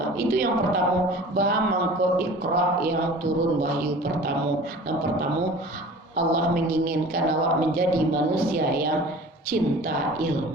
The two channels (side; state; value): both; normal; correlation 0.42